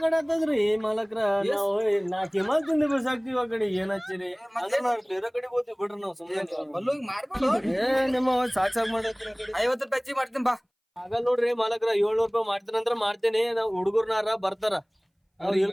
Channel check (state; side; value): identical; both; correlation 1.00